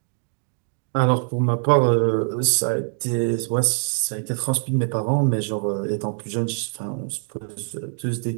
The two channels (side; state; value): left; silent; 57 dB below the other